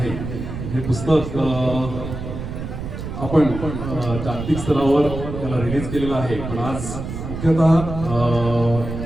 हे पुस्तक आपण जागतिक स्तरावर त्याला रिलीज केलेलं आहे, पण आज मुख्यतः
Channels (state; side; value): noise; right; rumble, 7 dB below the sound